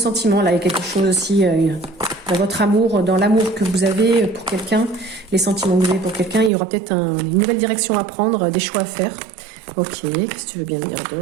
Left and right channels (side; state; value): left; drops out; at 6.5 s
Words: Là, il y a quelque chose aussi dans votre amour, dans l'amour que vous avez pour quelqu'un, les sentiments que vous avez pour quelqu'un. Il y aura peut-être une nouvelle direction à prendre, des choix à faire. Ok, qu'est-ce que tu veux bien dire